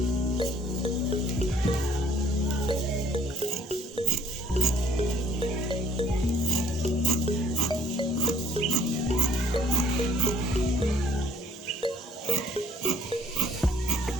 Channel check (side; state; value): both; normal; correlation 0.58